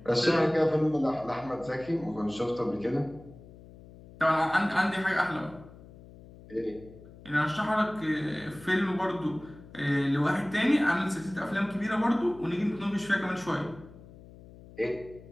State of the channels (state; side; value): noise; left; hum, 20 dB below the sound